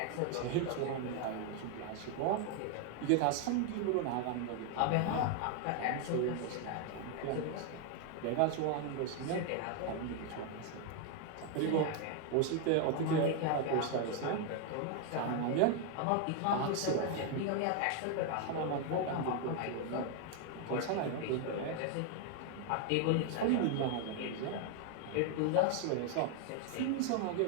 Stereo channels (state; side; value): different; both; correlation 0.00